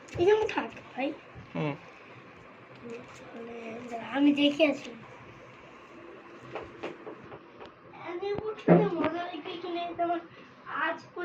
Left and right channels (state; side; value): identical; both; correlation 1.00